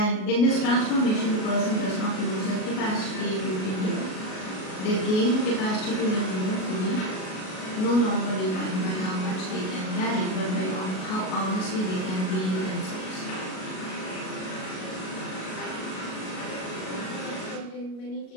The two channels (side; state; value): right; late; 37 ms